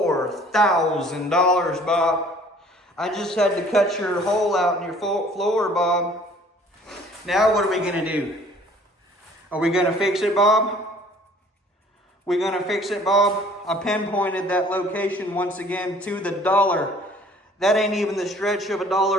Bob. I just had to cut your hole out in your floor, Bob. Now what are we gonna do? Are we gonna fix it, Bob? We gonna fix it, Bob? I pinpointed that location once again to the dollar. That ain't even the stretch of a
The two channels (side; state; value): both; normal; correlation 0.54